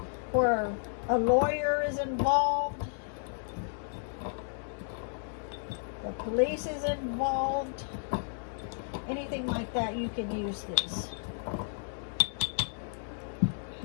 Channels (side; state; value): right; silent; digital silence